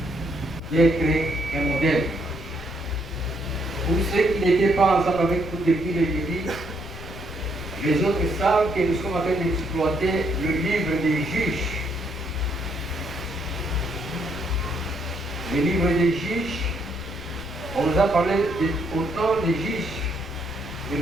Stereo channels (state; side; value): noise; left; rumble, 13 dB below the sound